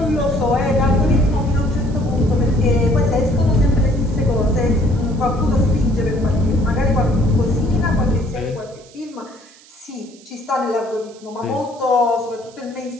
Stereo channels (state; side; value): noise; right; hiss, 25 dB below the sound